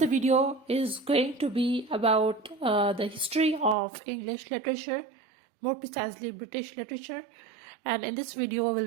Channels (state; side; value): drops out; left; at 3.8 s